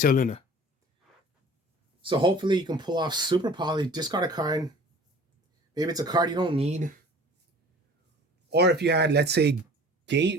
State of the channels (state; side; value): normal; both; correlation 0.46